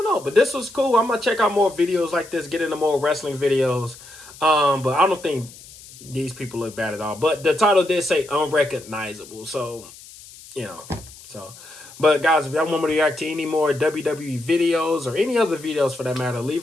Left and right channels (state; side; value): noise; left; hiss, 19 dB below the sound